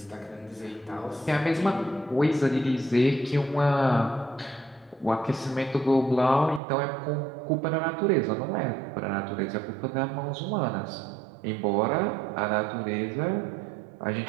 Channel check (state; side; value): drops out; left; at 6.6 s